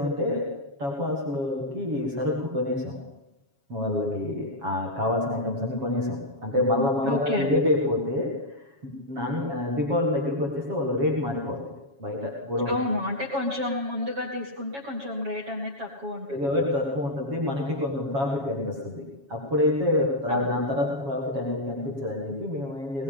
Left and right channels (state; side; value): late; left; 7.3 ms